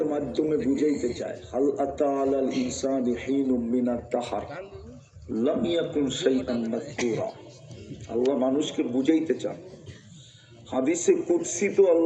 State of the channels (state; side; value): identical; both; correlation 1.00